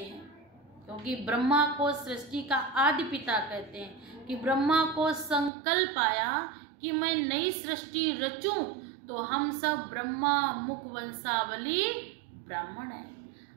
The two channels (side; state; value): left; drops out; at 5.5 s